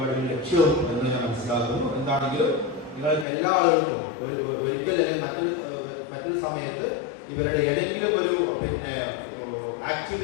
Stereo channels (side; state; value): right; drops out; at 3.2 s